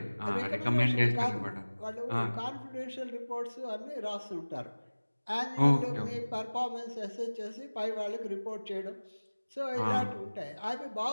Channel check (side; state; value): both; inverted; correlation -1.00